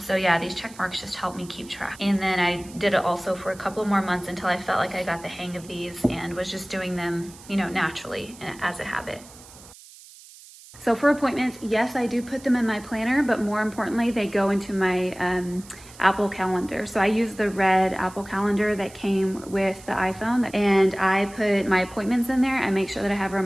yeah, these check marks just help me keep track. And then I did it also for a couple more months until I felt like I got the hang of these and was just doing them, naturally as a habit. So for appointments, yes, I do put them in my planner, but more importantly, they go into my Apple Calendar. So I use the red Apple Calendar that came with the iPhone, and I put my appointments in there. I make sure that I have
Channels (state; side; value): noise; right; hiss, 20 dB below the sound